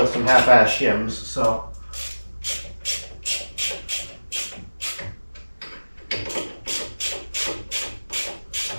some half-ass shims, so.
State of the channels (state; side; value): inverted; both; correlation -1.00